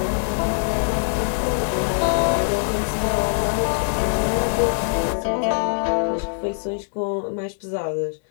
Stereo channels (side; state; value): right; silent; digital silence